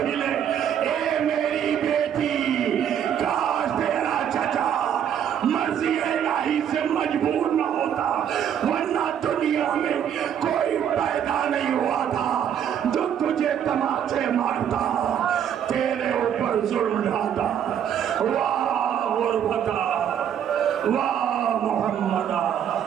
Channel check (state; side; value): quieter; left; 9.1 dB